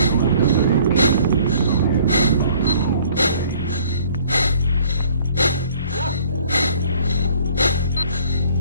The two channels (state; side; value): inverted; both; correlation -0.57